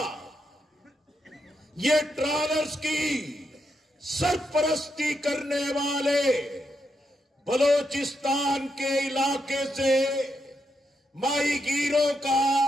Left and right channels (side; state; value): both; normal; correlation 0.82